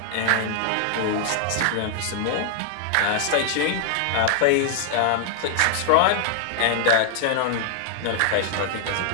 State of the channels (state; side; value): different; both; correlation -0.01